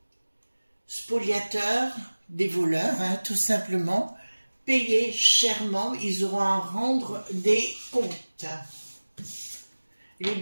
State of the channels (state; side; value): inverted; both; correlation -1.00